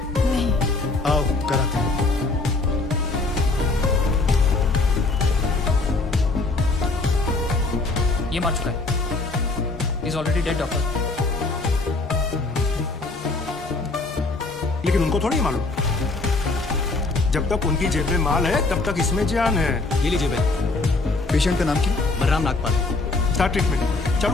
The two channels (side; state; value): right; quieter; 3.4 dB